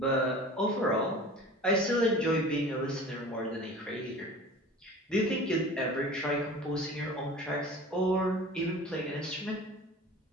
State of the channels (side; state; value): both; normal; correlation 0.40